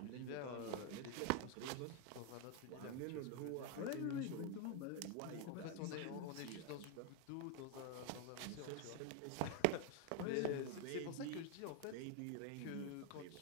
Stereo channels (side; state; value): both; different; correlation 0.01